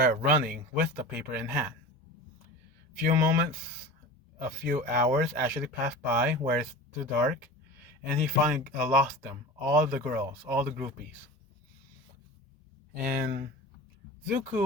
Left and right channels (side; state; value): both; normal; correlation 0.34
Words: running with the paper in hand. A few hours actually pass by where it's too dark, and he finally lost them, all the girls, all the groupies. And